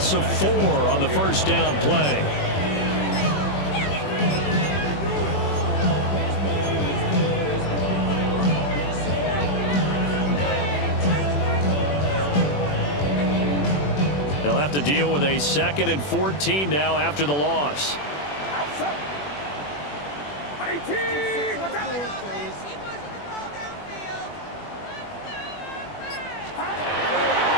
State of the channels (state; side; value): late; right; 21 ms